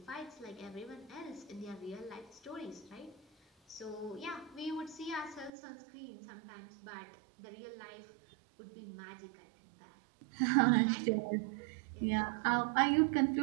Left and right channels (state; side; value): drops out; left; at 5.5 s